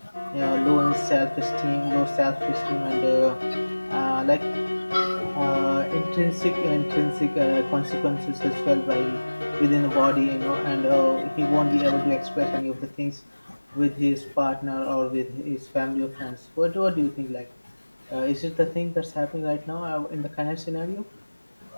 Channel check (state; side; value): inverted; both; correlation -1.00